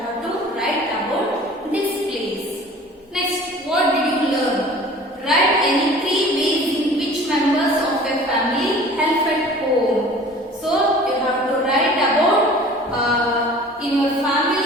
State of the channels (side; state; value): both; normal; correlation 0.45